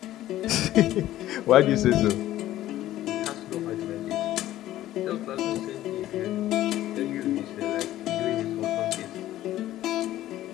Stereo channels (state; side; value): quieter; right; 14.0 dB